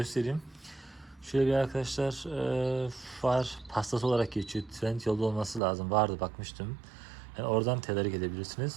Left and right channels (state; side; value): drops out; left; at 5.6 s